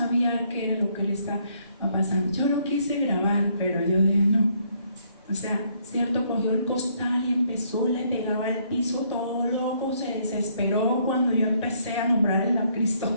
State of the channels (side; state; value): both; inverted; correlation -0.68